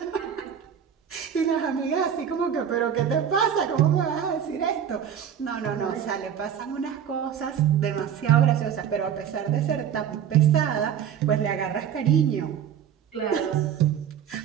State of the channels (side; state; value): left; quieter; 8.7 dB